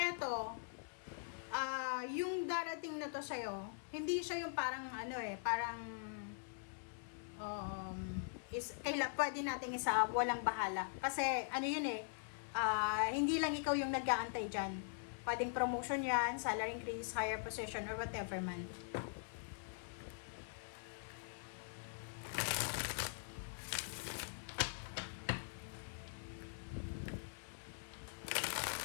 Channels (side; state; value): right; silent; digital silence